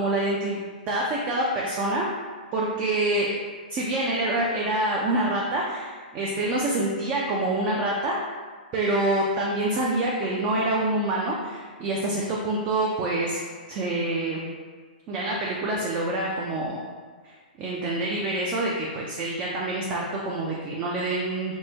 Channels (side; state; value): both; normal; correlation -0.07